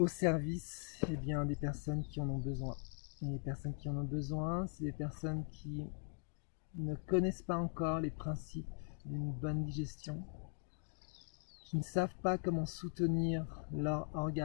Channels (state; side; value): silent; right; 51 dB below the other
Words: service des personnes qui en ont besoin. Et les personnes qui en ont besoin, c'est des personnes qui ne connaissent pas encore les principes d'une bonne digestion, qui ne savent pas comment soutenir leur